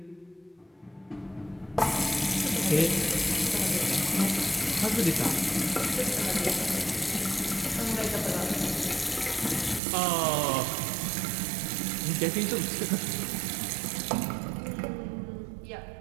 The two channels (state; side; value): drops out; left; at 9.8 s